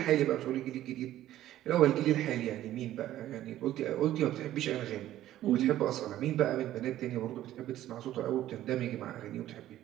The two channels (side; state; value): left; quieter; 13.4 dB